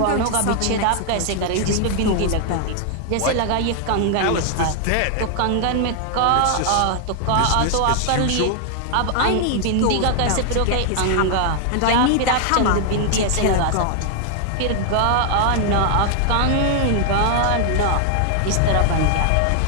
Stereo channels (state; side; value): different; both; correlation 0.00